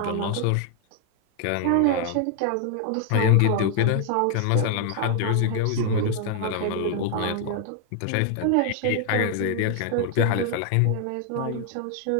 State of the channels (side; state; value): both; different; correlation 0.00